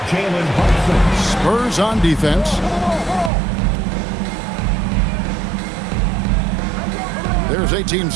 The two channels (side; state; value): left; drops out; at 3.3 s